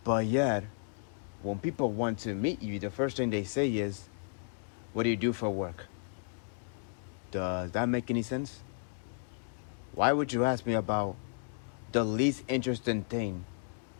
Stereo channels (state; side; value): silent; right; digital silence